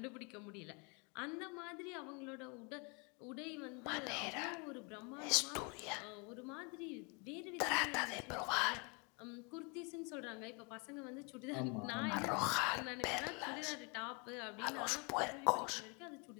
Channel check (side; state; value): right; quieter; 32.5 dB